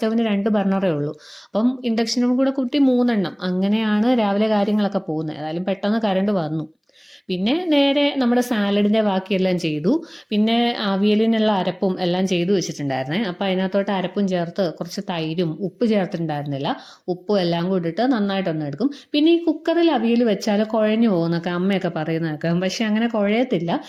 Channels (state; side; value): identical; both; correlation 1.00